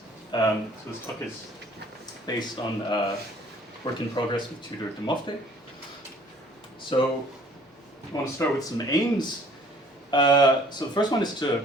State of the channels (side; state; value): both; normal; correlation 0.55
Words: So this talk is based on work in progress with Tudor de Mofte. So I want to start with some aims. So the first one is to